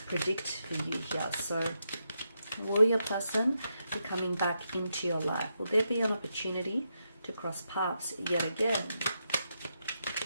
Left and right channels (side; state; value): both; inverted; correlation -0.83